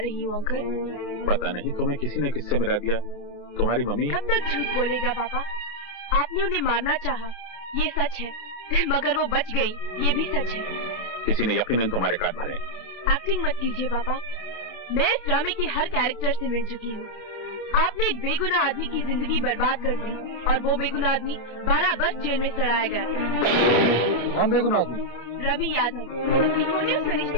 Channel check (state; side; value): late; right; 28 ms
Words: हूँ अंकल। पता नहीं तुम्हें किसी ने किससे मिला दिया। तुम्हारी मम्मी कब तक झूठ बोलेगा पापा? आपने उन्हें मारना चाहा, ये सच है, मगर वो बच गई, ये भी सच है। किसी ने यकीनन तुम्हारे काट भरे। एक्टिंग मत कीजिए पापा, मैं इस ड्रामे के हर कैरेक्टर से मिल चुकी हूँ। आपने एक बेगुनाह आदमी की जिंदगी बर्बाद कर दी और वो बेगुनाह आदमी 12 वर्ष जेल में सड़ाया गया। कौन बेगुनाह आदमी? रवि यादव। इन्होंने उस